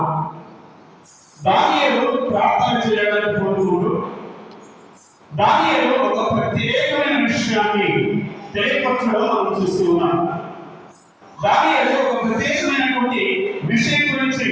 దానియేలు ప్రార్థన చేయడానికి కోరుకున్నాడు. దానియేలు ఒక ప్రత్యేకమైన విషయాన్ని తెలియపరచడం మనం చూస్తూ ఉన్నాం. దానియేలు ఒక ప్రత్యేకమైనటువంటి విషయం గురించి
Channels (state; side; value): identical; both; correlation 1.00